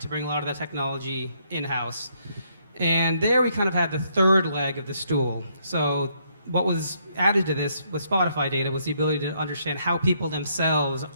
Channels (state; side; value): inverted; both; correlation -0.72